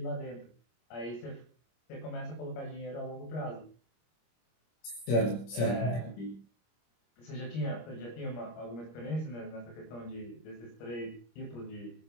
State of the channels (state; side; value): late; right; 25 ms